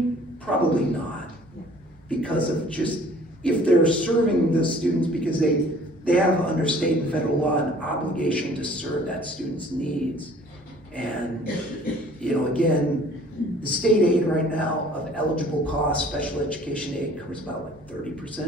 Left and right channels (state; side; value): normal; both; correlation 0.53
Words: Probably not. Because of just, if they're serving the students because they have under state and federal law an obligation to serve that student's needs. And, again, the state aid right now of eligible costs, special education aid covers about like